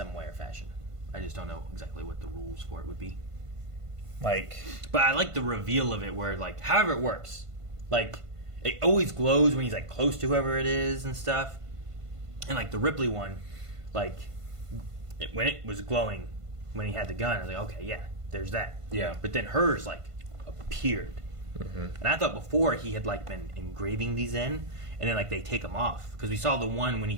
way or fashion. I just don't know exactly what the rules for it would be. But I like the reveal of it where like however it works. Like it always glows when he's like close to whoever it is and stuff. And like the Ripley one, like when it was glowing when he had the gun, I was like, okay, yeah. There's that. Yeah. But then hers, like, appeared. Mm-hmm. And I thought before he had, like, been engraving these in, and then, like, they take them off. Because we saw the one when he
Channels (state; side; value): late; left; 1.5 ms